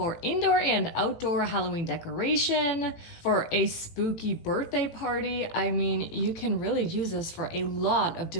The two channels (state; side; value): late; right; 18 ms